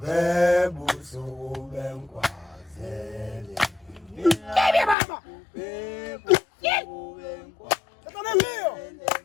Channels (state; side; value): drops out; right; at 5.0 s